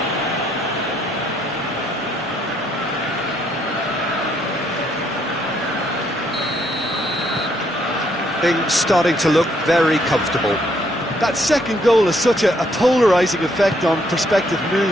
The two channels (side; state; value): both; normal; correlation 0.70